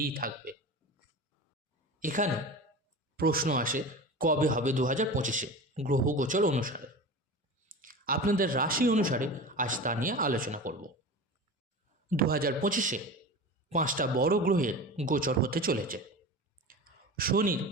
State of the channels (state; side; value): normal; both; correlation 0.31